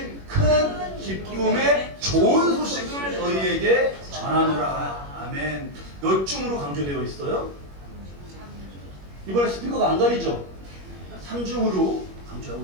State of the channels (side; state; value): left; late; 21 ms